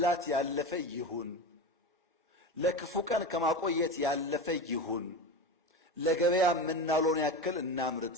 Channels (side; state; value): both; normal; correlation 0.24